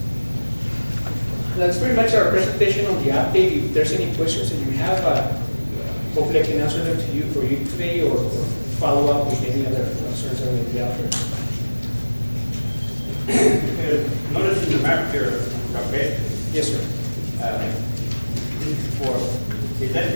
That's pretty much our presentation on the update. If there's any questions that you have, hopefully I can answer them to you for you today or follow up with any other concerns that may be out there. Notice in the map here, okay? Yes, sir. Is that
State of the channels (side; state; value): both; inverted; correlation -1.00